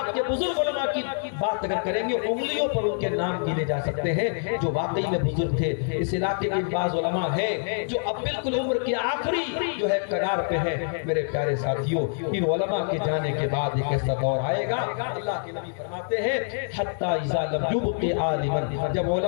کے بزرگ علماء کی بات اگر کریں گے، انگلیوں پر ان کے نام گنے جا سکتے ہیں جو واقعی میں بزرگ تھے۔ اس علاقے کے بعض علماء ہیں جو اب بالکل عمر کے آخری جو ہے کنار پہ ہیں۔ میرے پیارے ساتھیوں، ان علماء کے جانے کے بعد ایک ایسا دور آئے گا، اللہ کے نبی فرماتے ہیں حتی اذا یبقی عالما، جب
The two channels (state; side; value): silent; right; 61 dB below the other